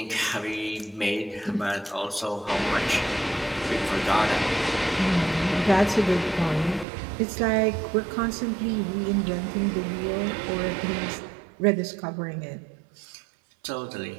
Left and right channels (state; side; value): drops out; left; at 6.9 s